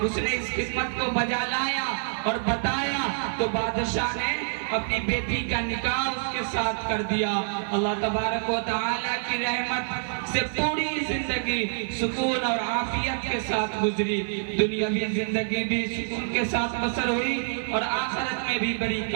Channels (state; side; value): silent; left; 56 dB below the other